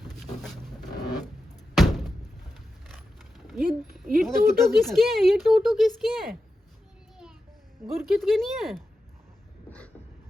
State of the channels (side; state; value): both; normal; correlation 0.91